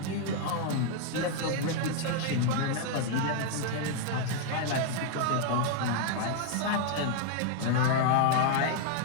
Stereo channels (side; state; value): both; different; correlation 0.00